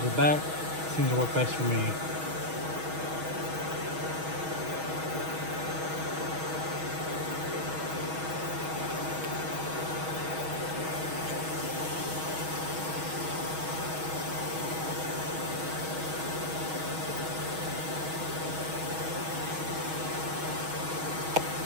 the back. It seems to work best for me.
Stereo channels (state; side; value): late; left; 6.3 ms